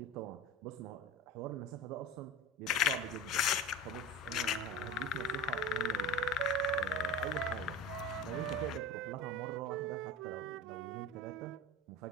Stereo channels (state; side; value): normal; both; correlation 0.32